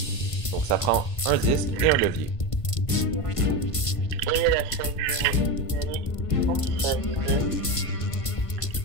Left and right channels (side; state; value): right; late; 1.5 ms